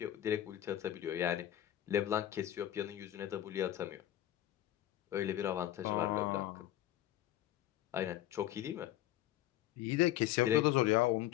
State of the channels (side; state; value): right; quieter; 13.0 dB